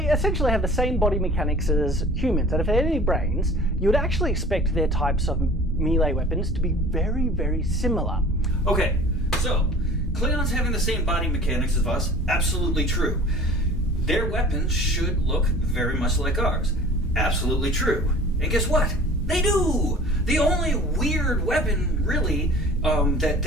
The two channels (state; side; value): normal; both; correlation 0.45